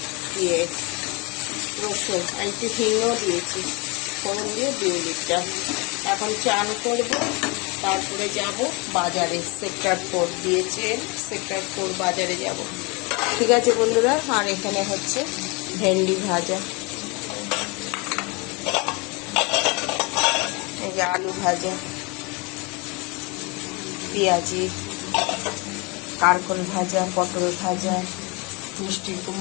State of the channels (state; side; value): quieter; right; 28.8 dB